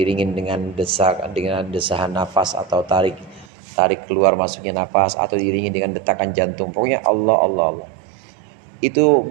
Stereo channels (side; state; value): left; drops out; at 3.5 s